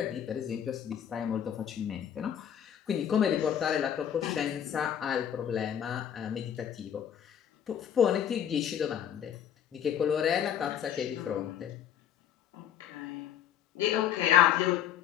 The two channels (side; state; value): right; quieter; 9.5 dB